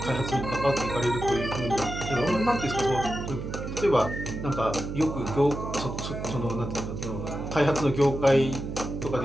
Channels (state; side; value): noise; right; hum, 6 dB below the sound